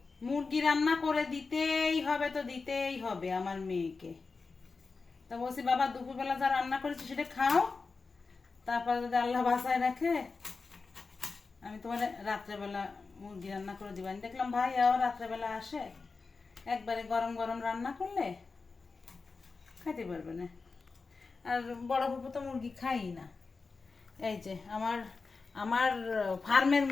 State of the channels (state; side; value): quieter; right; 4.3 dB